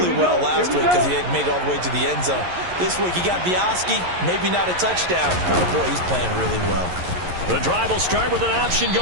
well last week because he had made it all the way to the end zone. This week he got the Oski, maybe not a touchdown, but boy, he's playing really well. The drive will start with an option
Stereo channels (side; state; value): left; late; 11 ms